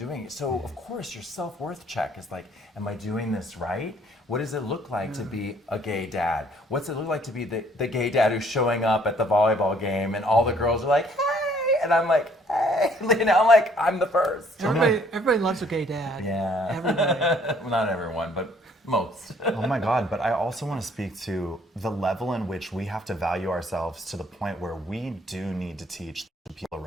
it. So, of course, your self-worth check is like, am I doing this right? What does it look like to be a gay dad? What's it look like to be the gay dad who's showing up at the volleyball game and all the girls are like, hey, and I'm like, hey, you know, I'm like, I'm the first. Everybody loves a gay dad. Yeah. Everybody. Well, not everyone, but most. Oh my God, but I also want to speak to the level in which we have to value ourselves to the point where we do need to teach the people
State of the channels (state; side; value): normal; both; correlation 0.61